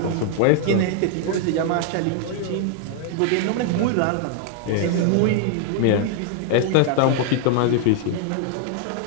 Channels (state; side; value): different; both; correlation 0.00